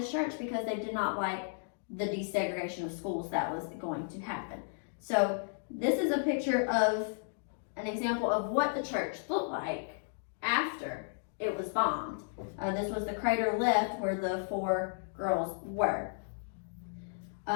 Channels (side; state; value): right; silent; digital silence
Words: church because they did not like the desegregation of schools that was going to happen. So this is a picture of an example of what the church looked like after it was bombed. This was the crater left where the 4 girls were.